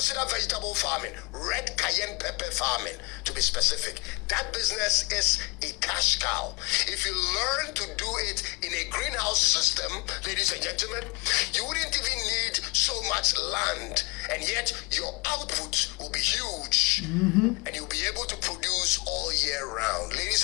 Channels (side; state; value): right; quieter; 26.0 dB